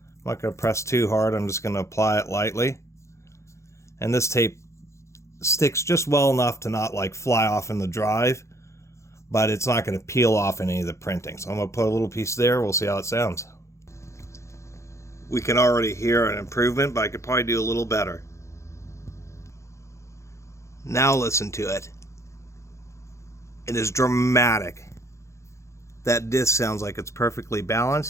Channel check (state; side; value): late; right; 0.14 ms